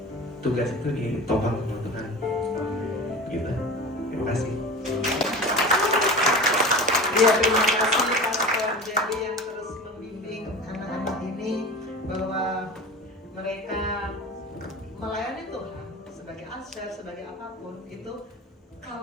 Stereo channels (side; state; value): both; normal; correlation 0.33